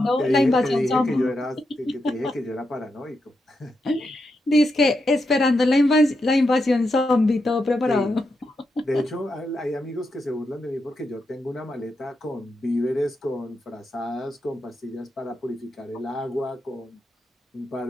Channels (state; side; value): normal; both; correlation 0.85